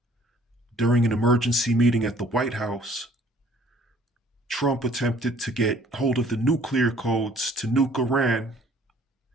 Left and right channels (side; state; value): both; normal; correlation 0.56